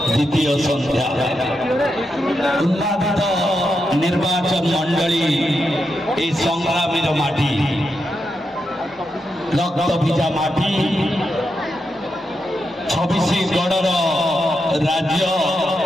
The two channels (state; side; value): normal; both; correlation 0.85